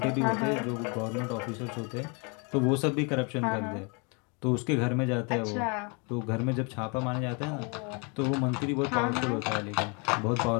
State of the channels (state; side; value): quieter; right; 33.2 dB